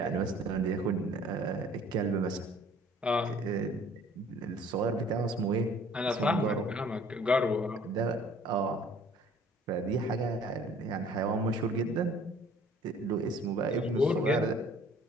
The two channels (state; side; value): normal; both; correlation 0.54